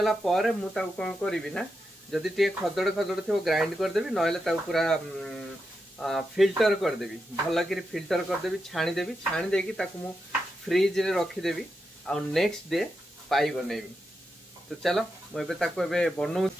पर मु ताकु कोन करबी ना जदि टे खदड़ खदड़ थो ग्राइंड कर देबी नहले ताकु पूरा फिल्टर कर देबी भल कि फिल्टर कर देबी छाणी देकी ताकु मु फ्रिज रे रखी देबी आ नेक्स्ट डे पाई बनेबी। तो चलो मुझे ताकु एबे बनौ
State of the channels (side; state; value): both; normal; correlation 0.87